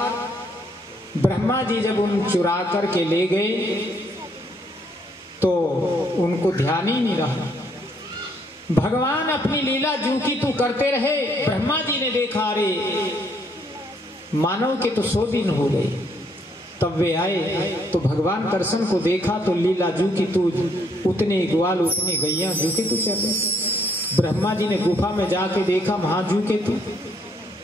ब्रह्मा जी जब उन चुरा करके ले गए तो उनको ध्यान ही नहीं रहा। भगवान अपनी लीला जू की तू करते रहे। ब्रह्मा जी ने देखा, अरे मानव के तो 100 दिन हो गए। तब वे आए तो भगवान कृष्ण को देखा तो लीला जू की तू उतने ग्वाल उतने गैया जू के तू चले। ब्रह्मा जी ने गुफा में जाके देखा, वहां जू के तू,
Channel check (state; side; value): normal; both; correlation 0.70